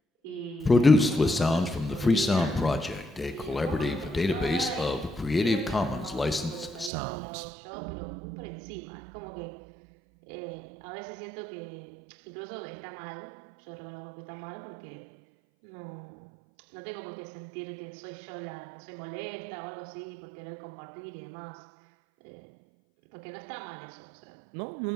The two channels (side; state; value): left; drops out; at 6.9 s